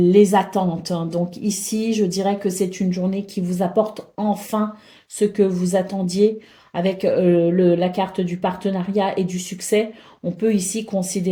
attentes. Donc ici, je dirais que c'est une journée qui vous apporte enfin ce que vous attendiez avec la carte du partenariat et du succès. On peut ici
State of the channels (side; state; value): both; identical; correlation 1.00